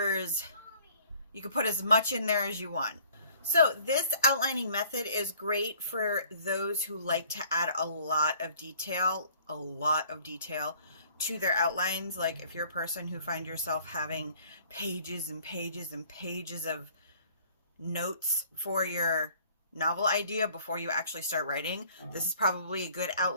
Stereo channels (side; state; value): both; inverted; correlation -0.56